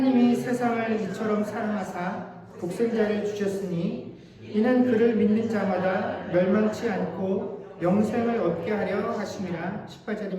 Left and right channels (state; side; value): identical; both; correlation 1.00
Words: 세상을 이처럼 사랑하사 독생자를 주셨으니 이는 그를 믿는 자마다 멸망치 않고 영생을 얻게 하려 하심이라.